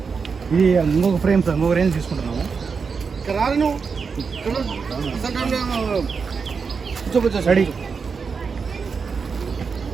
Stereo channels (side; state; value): left; quieter; 5.4 dB